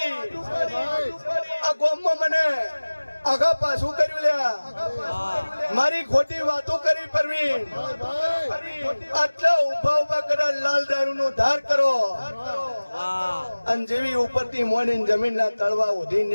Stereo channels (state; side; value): inverted; both; correlation -1.00